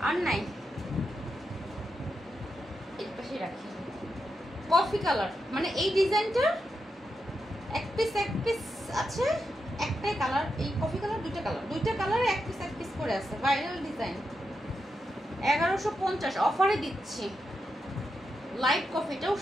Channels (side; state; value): both; normal; correlation 0.86